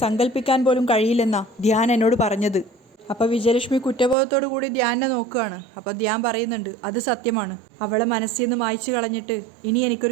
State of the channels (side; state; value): left; drops out; at 4.2 s